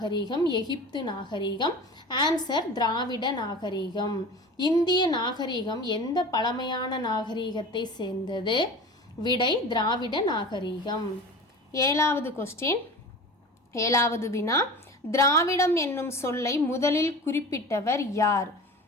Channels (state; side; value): normal; both; correlation 0.35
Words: எகிப்து நாகரிகம். ஆன்சர் திராவிட நாகரிகம். இந்திய நாகரிகம் எந்த பழமையான நாகரிகத்தை சேர்ந்தது? விடை திராவிட நாகரிகம். 7வது கொஸ்டின், 7வது வினா, திராவிடம் என்னும் சொல்லை முதலில் குறிப்பிட்டவர் யார்?